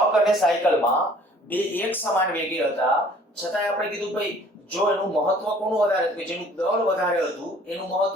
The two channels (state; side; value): normal; both; correlation 0.54